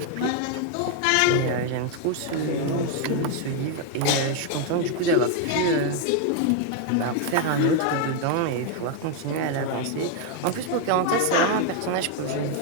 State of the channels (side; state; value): both; different; correlation 0.01